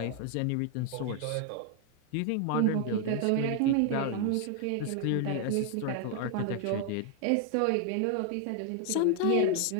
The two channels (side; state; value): both; different; correlation 0.00